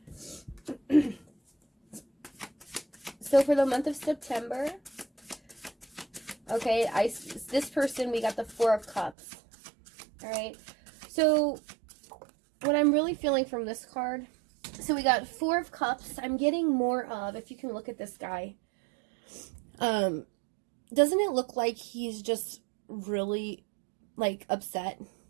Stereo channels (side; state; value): left; drops out; at 9.2 s